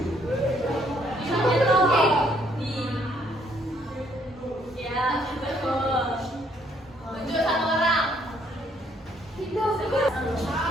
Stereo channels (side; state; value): both; normal; correlation 0.68